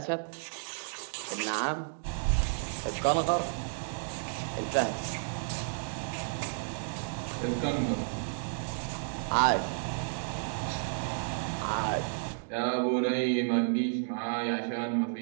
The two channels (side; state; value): left; silent; digital silence